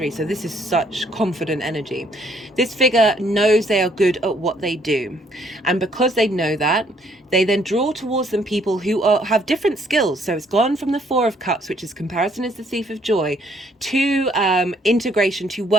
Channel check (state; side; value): normal; both; correlation 0.66